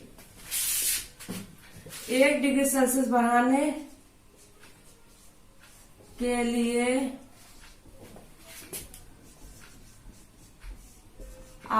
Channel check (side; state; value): both; identical; correlation 1.00